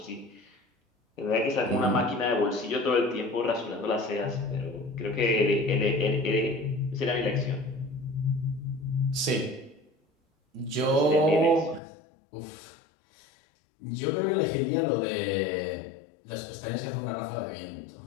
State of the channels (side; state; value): right; drops out; at 11.8 s